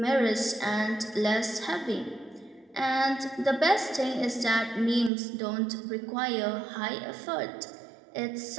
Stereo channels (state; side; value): drops out; left; at 5.1 s